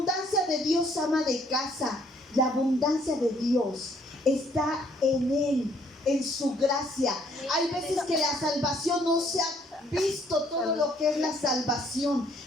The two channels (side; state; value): both; normal; correlation 0.64